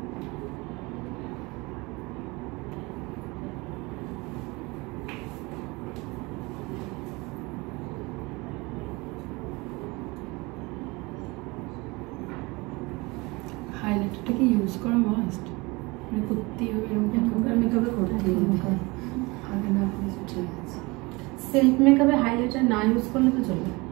হাইলাইটারটা কি ইউজ করা মাস্ট? মানে করতেই হবে এরকম? এখনকার মেকআপে করতেই হবে, আগে না করলে ঠিক আছে। সেলফ মেকআপে হাইলাইটার না ইউজ করলে তো চলবে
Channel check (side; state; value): left; quieter; 24.7 dB